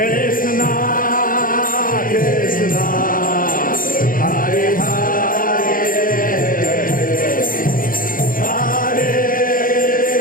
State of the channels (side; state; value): right; late; 0.40 ms